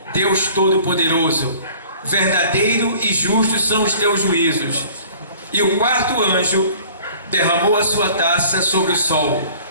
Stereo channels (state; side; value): inverted; both; correlation -0.49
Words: Deus Todo-Poderoso, verdadeiro e justo são os teus juízos. E o quarto anjo derramou a sua taça sobre o sol,